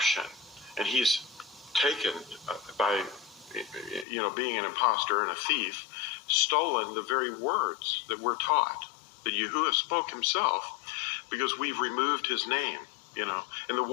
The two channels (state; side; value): drops out; right; at 4.0 s